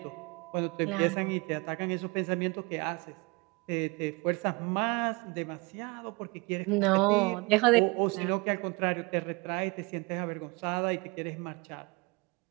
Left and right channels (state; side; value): quieter; left; 27.4 dB